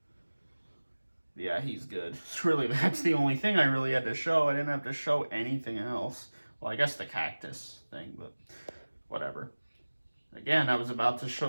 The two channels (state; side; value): inverted; both; correlation -1.00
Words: Yeah, he's good. It's really, that's the only thing I really had to show. I didn't have to show anything else. Well, I guess the cactus thing, but whatever. Again, I was about to